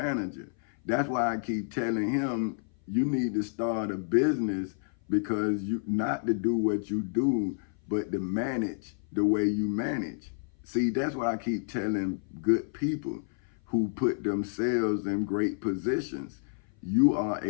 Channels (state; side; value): silent; right; 56 dB below the other